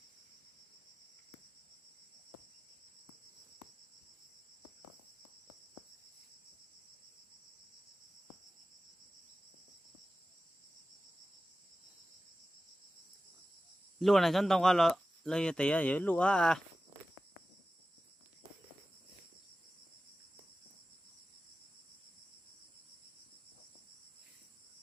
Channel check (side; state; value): both; normal; correlation 0.95